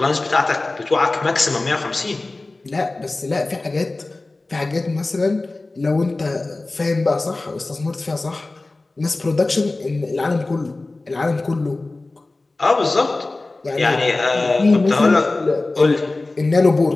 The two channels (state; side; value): quieter; right; 3.1 dB